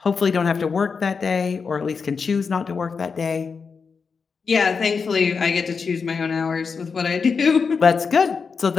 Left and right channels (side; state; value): right; quieter; 5.4 dB